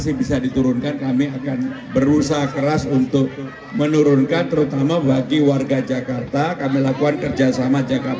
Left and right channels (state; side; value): identical; both; correlation 1.00